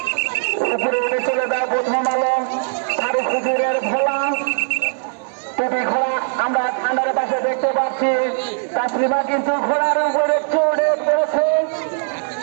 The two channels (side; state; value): left; silent; digital silence